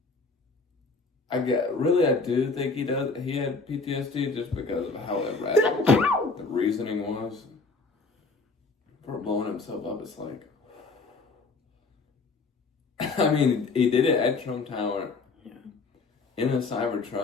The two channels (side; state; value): right; quieter; 4.0 dB